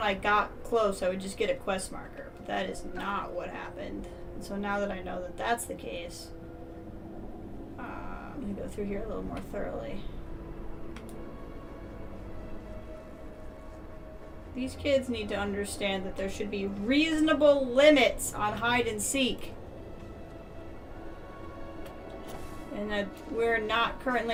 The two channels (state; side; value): identical; both; correlation 1.00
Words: I got close I would just get a quest marker, but that is not what happened. And so now that I know that that's the case, I'm going to go through here a little more thoroughly. These kids need to understand that there should be reasonable limits on hide and seek. And that we're not